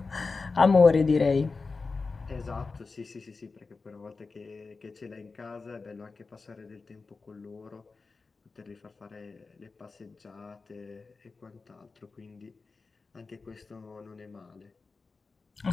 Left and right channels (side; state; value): right; quieter; 4.2 dB